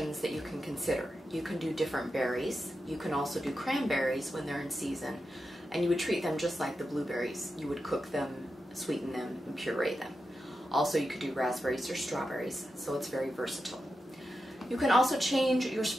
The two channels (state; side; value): normal; both; correlation 0.89